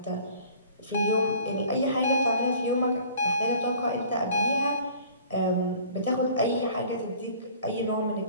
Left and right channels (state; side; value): inverted; both; correlation -0.49